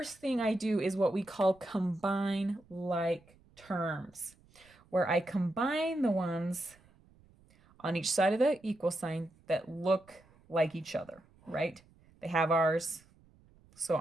thing I do is what we call combine like terms, where I combine the ones on each side of the equal sign that look like each other, right? They have R's, so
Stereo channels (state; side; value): noise; right; rumble, 29 dB below the sound